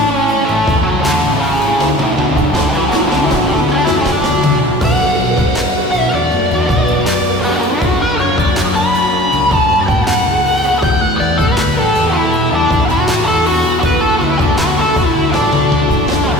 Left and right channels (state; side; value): normal; both; correlation 0.46